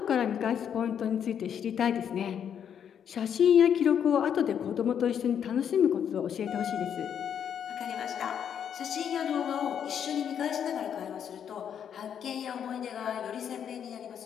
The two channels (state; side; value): quieter; right; 8.5 dB